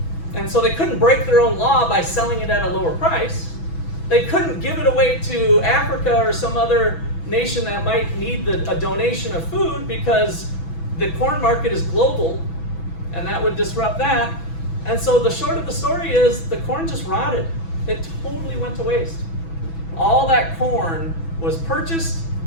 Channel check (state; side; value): late; right; 6.1 ms